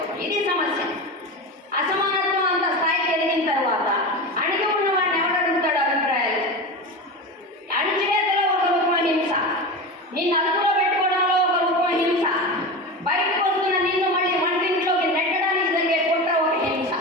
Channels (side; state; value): both; normal; correlation 0.25